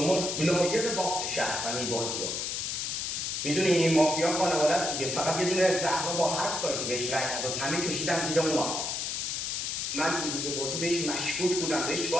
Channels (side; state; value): left; noise; hiss, 2 dB below the sound